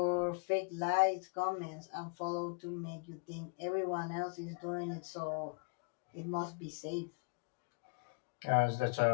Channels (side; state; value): right; quieter; 32.6 dB